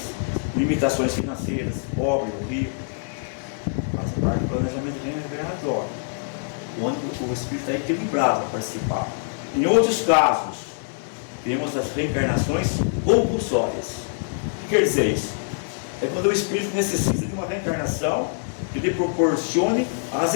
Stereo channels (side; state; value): right; silent; 62 dB below the other